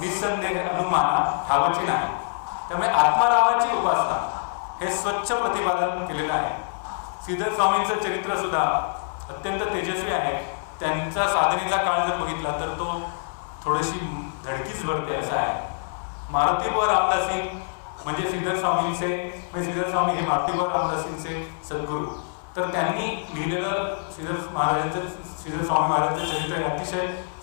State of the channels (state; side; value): silent; right; 62 dB below the other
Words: अनुमाना ठावची नाही. त्यामुळे आत्मारामाची उपासना हे स्वच्छ प्रतिपादन केलेलं आहे. श्रीधर स्वामींचं चरित्र सुद्धा अत्यंत तेजस्वी आहे. त्यांचा साधनेचा काळ जर बघितला तर तो थोडीशी धडकीच भरते असा आहे. मारुतीबुवा रामदासी म्हणजे श्रीधर स्वामी हे मारुतीबुवा रामदासींचे सद्गुरू. तर त्यांनी लिहिलेलं श्रीधर स्वामी महाराजांचं चरित्र अतिशय